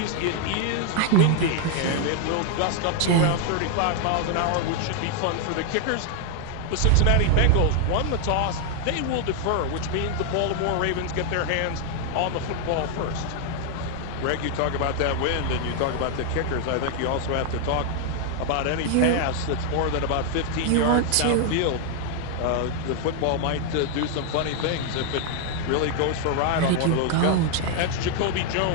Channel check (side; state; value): both; different; correlation 0.01